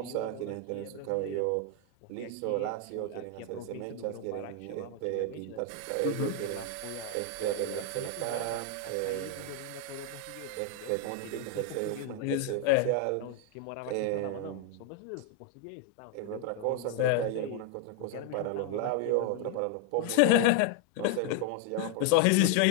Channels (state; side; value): different; both; correlation 0.00